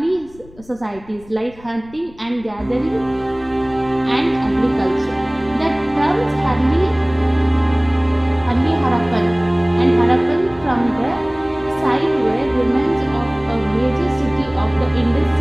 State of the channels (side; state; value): left; noise; rumble, 23 dB below the sound